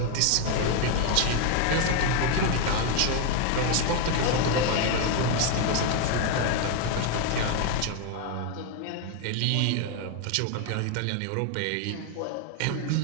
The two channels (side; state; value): both; different; correlation 0.01